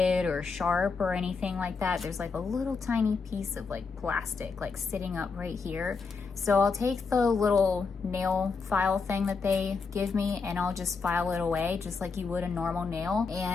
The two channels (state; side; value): quieter; right; 4.8 dB